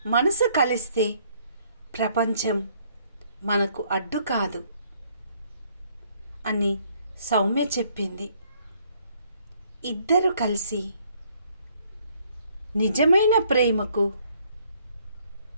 మనసు కలిస్తే ప్రపంచం మనకు అడ్డు కాదు అని సౌమ్య చెప్పింది. ఇద్దరు కలిసి నిజమైన ప్రేమకు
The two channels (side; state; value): both; inverted; correlation -0.65